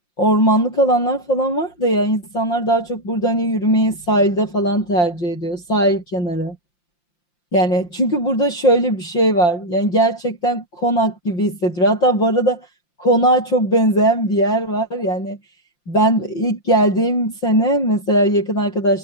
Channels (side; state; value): right; late; 5.8 ms